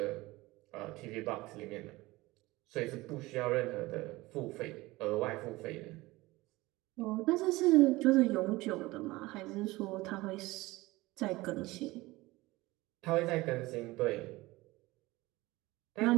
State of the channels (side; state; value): left; quieter; 20.2 dB